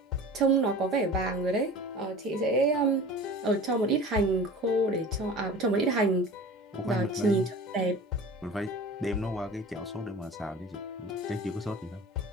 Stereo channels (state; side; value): normal; both; correlation 0.38